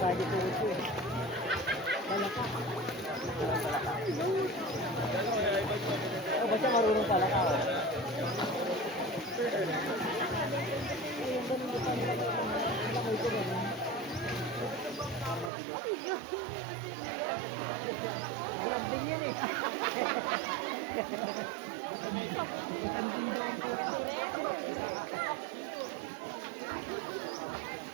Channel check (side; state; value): left; drops out; at 15.5 s